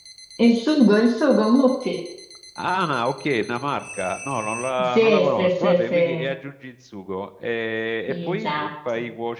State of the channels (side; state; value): both; identical; correlation 1.00